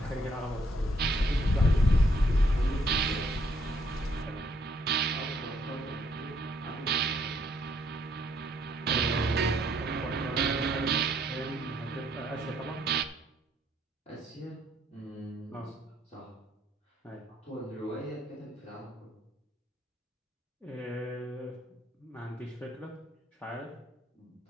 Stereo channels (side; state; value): both; normal; correlation 0.69